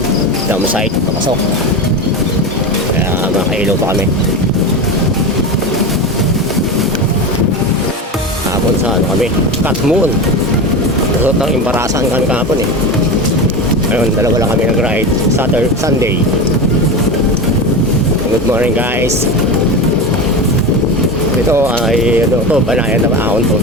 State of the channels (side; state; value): both; normal; correlation 0.23